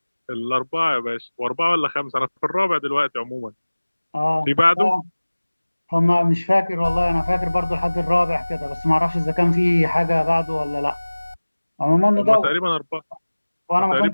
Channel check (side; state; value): both; inverted; correlation -1.00